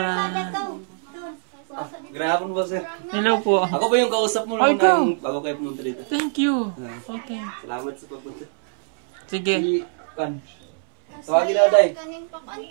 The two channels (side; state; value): left; silent; 63 dB below the other